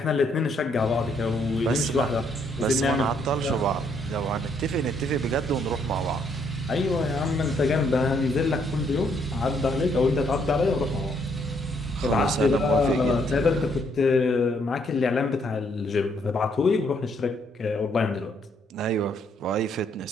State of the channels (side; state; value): both; normal; correlation 0.70